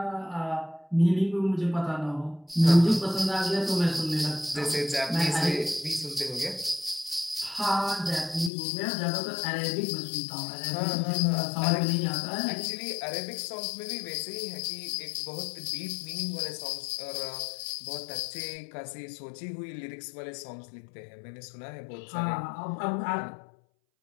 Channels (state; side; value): drops out; right; at 8.5 s